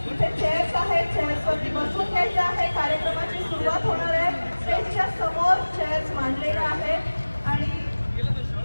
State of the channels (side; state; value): both; inverted; correlation -1.00